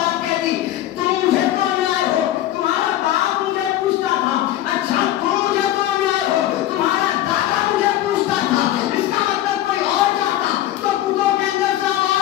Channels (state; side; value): quieter; right; 13.4 dB